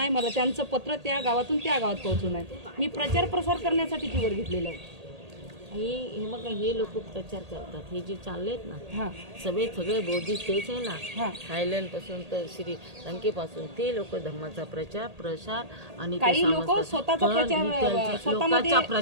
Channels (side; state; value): left; late; 1.8 ms